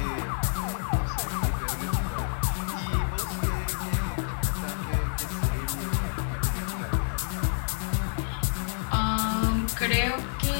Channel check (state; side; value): silent; right; digital silence